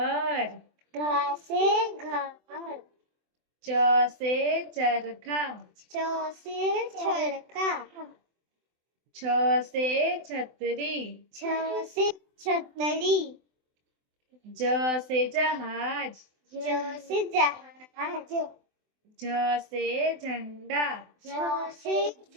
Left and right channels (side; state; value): left; late; 24 ms